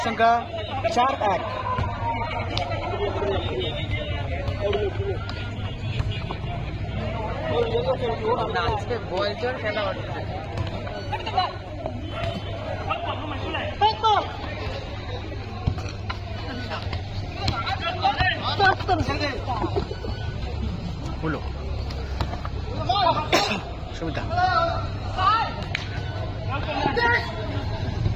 সংখ্যা 4-1। হলো সুমিতা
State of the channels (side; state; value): both; identical; correlation 1.00